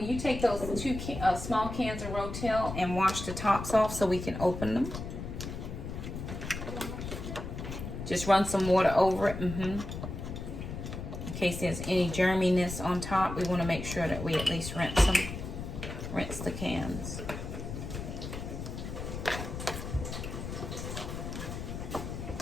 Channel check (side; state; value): left; noise; rumble, 7 dB below the sound